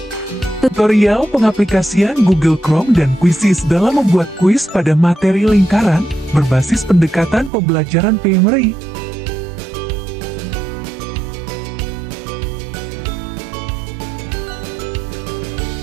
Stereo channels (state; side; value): drops out; left; at 7.5 s